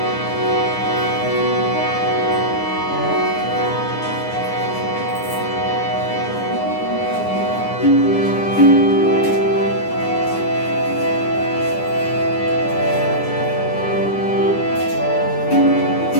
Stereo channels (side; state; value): right; late; 9.8 ms